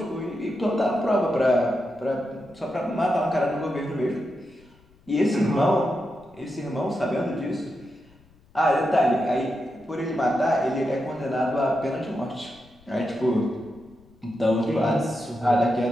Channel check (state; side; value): noise; left; rumble, 29 dB below the sound